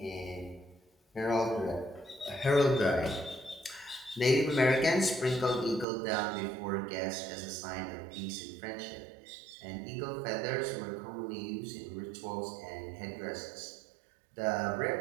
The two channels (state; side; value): drops out; left; at 5.9 s